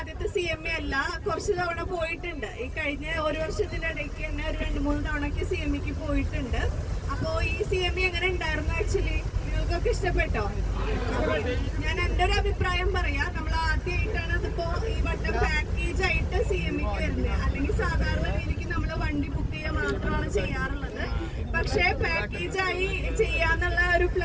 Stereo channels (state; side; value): identical; both; correlation 1.00